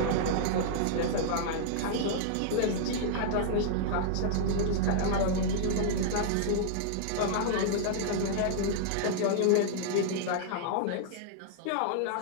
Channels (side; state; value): both; different; correlation -0.01